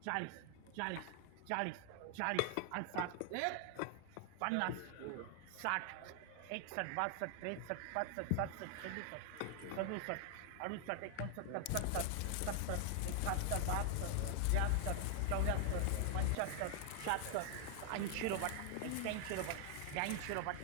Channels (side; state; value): both; different; correlation 0.00